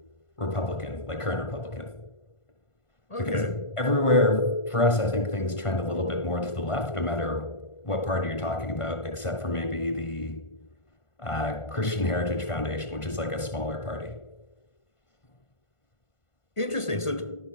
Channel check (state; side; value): late; right; 1.5 ms